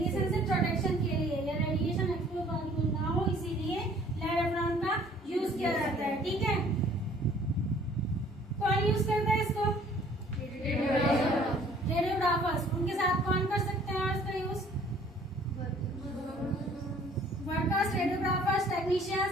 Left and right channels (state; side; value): normal; both; correlation 0.55